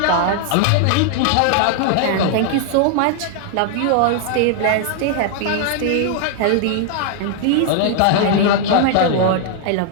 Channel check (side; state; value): both; different; correlation 0.00